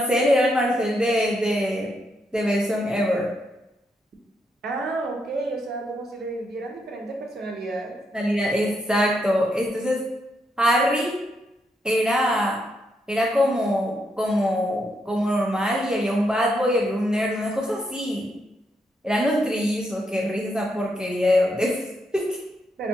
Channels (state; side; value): normal; both; correlation 0.79